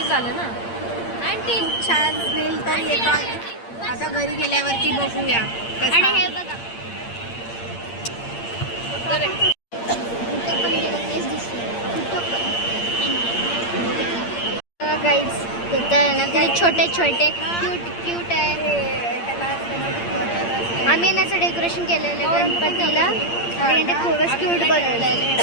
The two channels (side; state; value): right; late; 8.7 ms